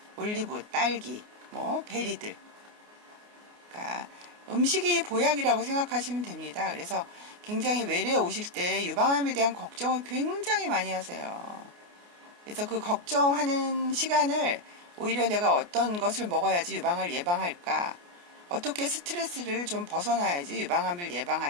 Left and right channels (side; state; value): left; late; 29 ms